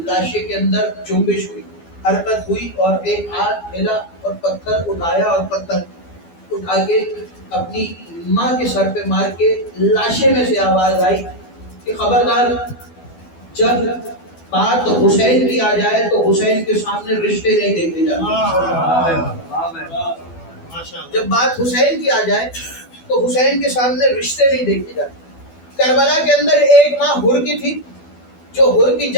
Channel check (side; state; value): right; late; 12 ms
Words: لاشے کے اندر جنبش ہوئی، حرکت ہوئی اور ایک ہاتھ ہلا اور پتھر اٹھایا اور پتھر اٹھا کے اپنی ماں کے سر پہ مار کے لاشے میں سے آواز آئی کہ خبردار جب بات حسین کی آ جائے تو حسین کے سامنے رشتے نہیں دیکھے جاتے. جب بات حسین کی آ جائے تو حسین کے سامنے رشتے نہیں دیکھے جاتے. کربلا کے اندر ایک ماں حر کی تھی جو حر کی